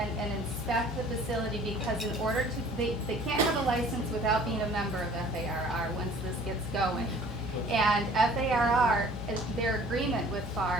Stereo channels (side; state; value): both; normal; correlation 0.51